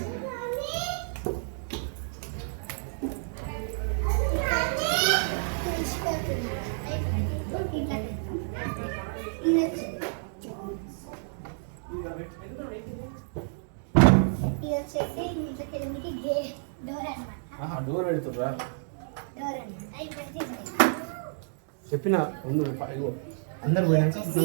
ఇది వచ్చేసి ఇంట్లోకి వెళ్ళడానికి డోర్ అనమాట. డోర్ పెడుతుర్రా? డోర్ అనమాట. ఇప్పుడైతే చెప్పిన అందరు పోయినాక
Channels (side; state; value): left; silent; digital silence